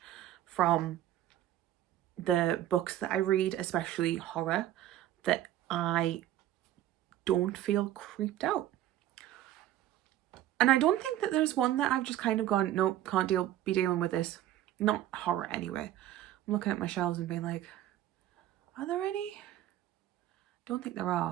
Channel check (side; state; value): left; quieter; 12.9 dB